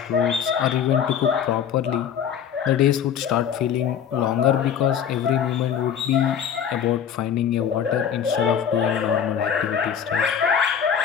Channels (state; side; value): quieter; right; 8.4 dB